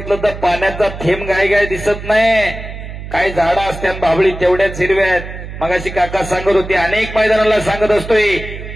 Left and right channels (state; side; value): noise; right; hum, 10 dB below the sound